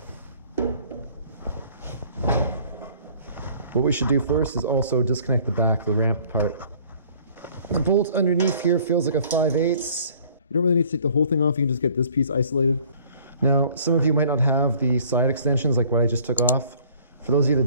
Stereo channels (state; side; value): inverted; both; correlation -0.55